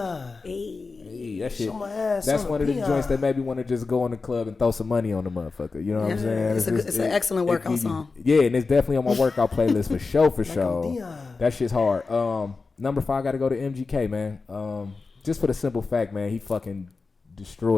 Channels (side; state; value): right; quieter; 4.2 dB